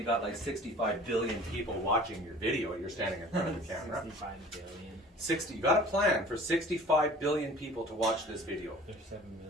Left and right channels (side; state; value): both; normal; correlation 0.46